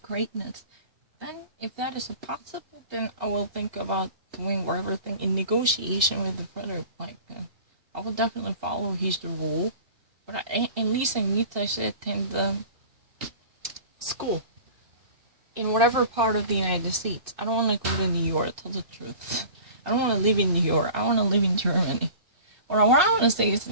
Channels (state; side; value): late; left; 2.6 ms